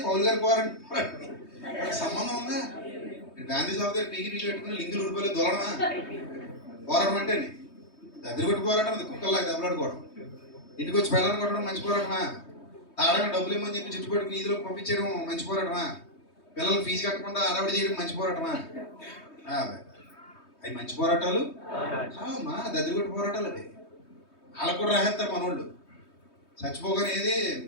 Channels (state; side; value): late; right; 3.2 ms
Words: పౌలు గారి పోరాటానికి సంబంధం ఉందా? గాంధీ షాప్ దగ్గర పీకి పెట్టుకుని లింకులు ఉడిపోలే దొరడమా? పోరాటం అంటే దగ్గర పెట్టి పోరాటం అది, కుక్కల్లాగా దెబ్బలాడుకోవడం. ఇంటికి వచ్చి పెళ్ళని కొట్టడం మంచి పోరాటమా? తాడగా డబ్బులు ఇమ్మని చెప్పి చుట్టు పెట్టుకుని ఈదులో పంపించడం మంచి పోరాటమా? పిల్లలు ఫీజు కట్టకుండా అరవడి చేయడం మంచి పోరాటమా? అవి మంచి పోరాటాలు మా దద్దరిగొట్టు పోరాటాలు. అవి వాళ్ళకు కూడా రాసేస్తారు మనోళ్ళు. చచ్చిపోగానే ఏది